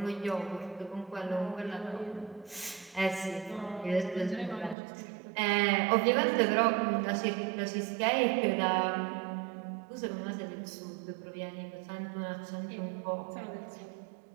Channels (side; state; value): left; drops out; at 4.8 s